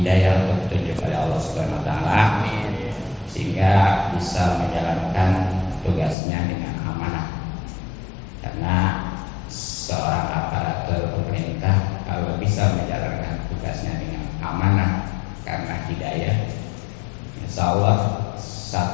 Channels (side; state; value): right; drops out; at 6.2 s